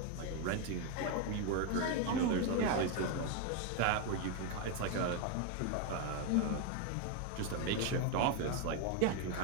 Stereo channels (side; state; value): both; different; correlation 0.01